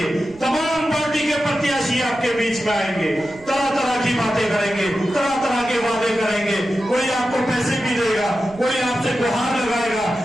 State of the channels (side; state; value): right; noise; rumble, 23 dB below the sound